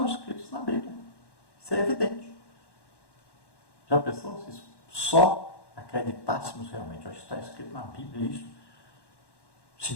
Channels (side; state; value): right; late; 1.1 ms